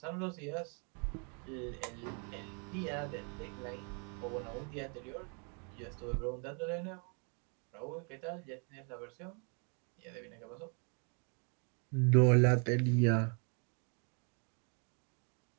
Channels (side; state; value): left; quieter; 37.7 dB